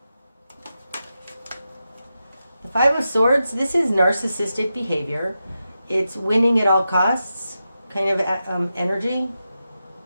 The Five of Swords, this is narcissistic behavior. It's winning at all costs kind of energy.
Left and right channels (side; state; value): both; inverted; correlation -0.90